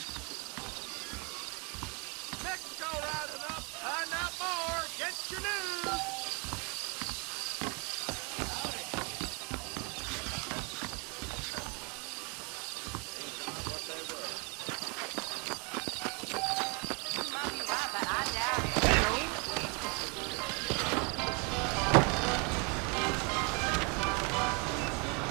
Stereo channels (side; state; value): left; quieter; 32.8 dB